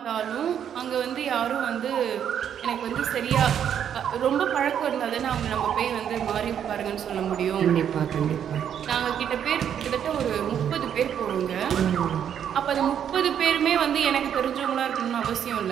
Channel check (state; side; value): quieter; left; 9.0 dB